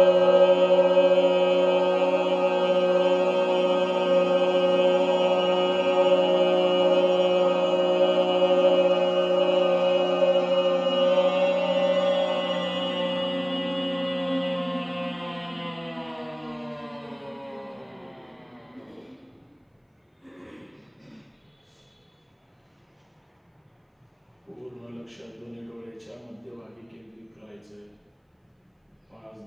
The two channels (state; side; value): identical; both; correlation 1.00